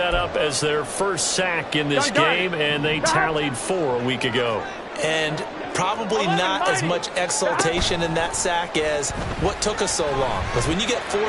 up as their first sack in this game, and they tallied 4 a week ago. And probably not as much exultation in that sack as what took us so long. Because when you get 4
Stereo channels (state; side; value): identical; both; correlation 1.00